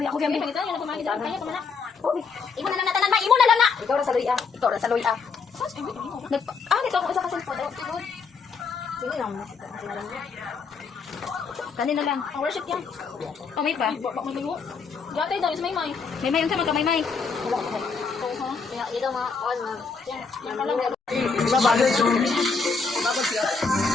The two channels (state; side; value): quieter; right; 5.1 dB